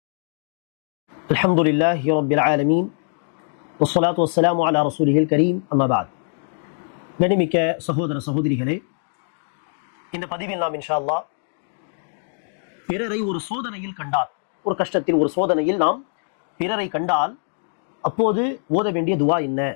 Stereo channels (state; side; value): silent; right; digital silence